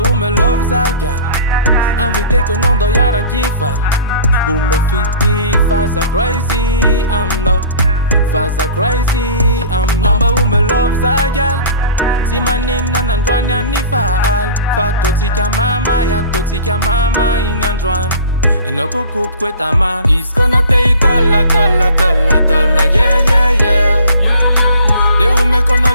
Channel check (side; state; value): both; inverted; correlation -0.44